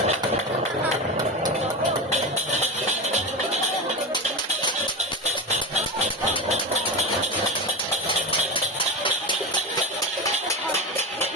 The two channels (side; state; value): both; normal; correlation 0.21